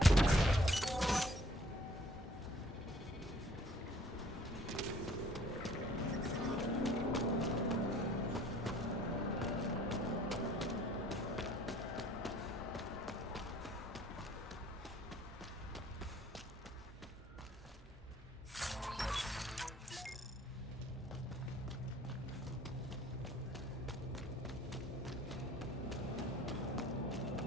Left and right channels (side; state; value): both; normal; correlation 0.57